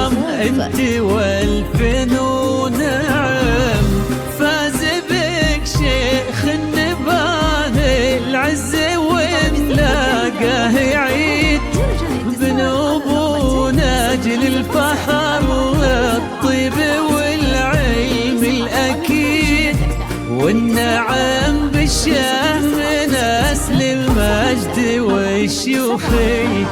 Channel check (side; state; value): both; identical; correlation 1.00